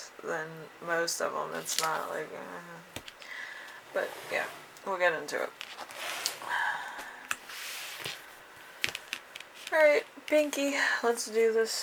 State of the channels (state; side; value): identical; both; correlation 1.00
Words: than most of them. It's not like... But yeah, we'll get into it. Alright, Pinky, let's do